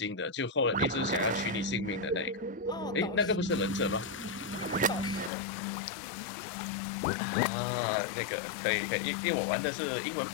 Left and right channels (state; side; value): drops out; right; at 5.3 s